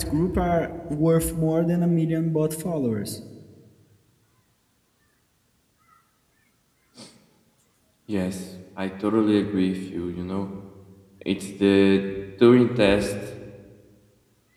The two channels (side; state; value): both; identical; correlation 1.00